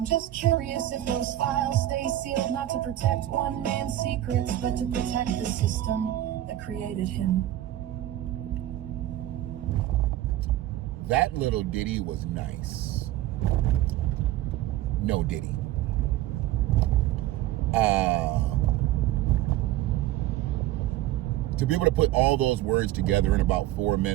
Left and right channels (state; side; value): quieter; left; 14.0 dB